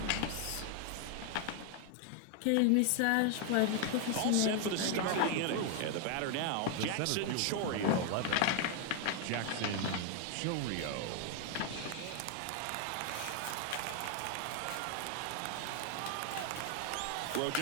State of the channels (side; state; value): both; different; correlation 0.00